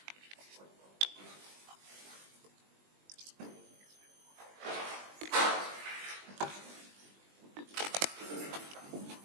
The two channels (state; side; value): late; left; 20 ms